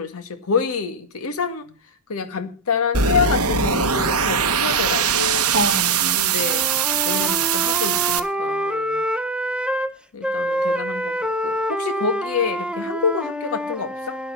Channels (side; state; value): both; normal; correlation 0.09